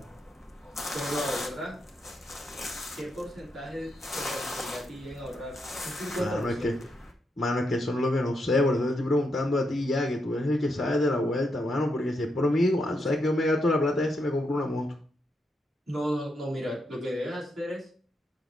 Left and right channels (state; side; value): normal; both; correlation 0.81